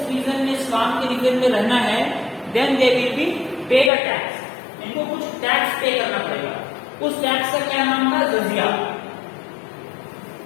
रीजन में, इस्लाम के रीजन में रहना है, then they will be paid a tax, इनको कुछ टैक्स पे करना पड़ेगा। उस टैक्स का क्या नाम था, jizya.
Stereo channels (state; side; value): drops out; right; at 3.9 s